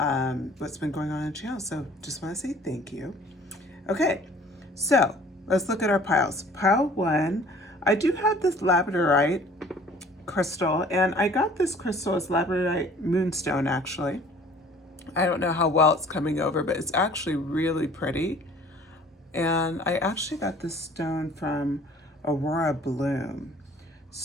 what's been going on the channel. So just want to say thank you. Okay, so let's look at our piles. Pile 1, I do have this labradorite crystal, and I got this crystal as labradorite moonstone actually. I don't know how well it's coming over, but it's actually really pretty. And I actually got this stone from Aurora Bloom.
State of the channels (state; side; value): normal; both; correlation 0.52